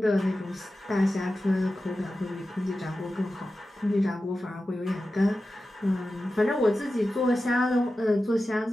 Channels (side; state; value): both; normal; correlation 0.93